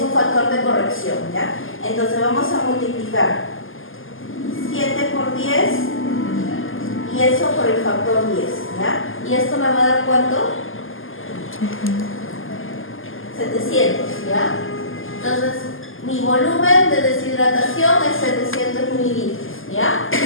un factor de corrección, ¿ya? Entonces vamos a multiplicar 7 por 10 y eso por el factor 10, ¿ya? ¿Y esto me va a dar cuánto? 700, ¿ya? Entonces, mi volumen de deshidratación es 700 mililitros, ¿ya?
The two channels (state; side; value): late; right; 0.59 ms